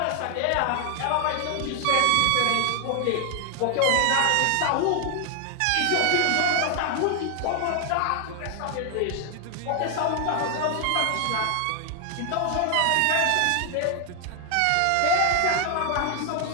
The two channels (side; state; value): both; different; correlation 0.00